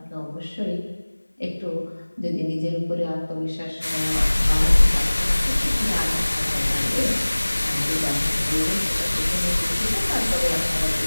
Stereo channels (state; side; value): inverted; both; correlation -1.00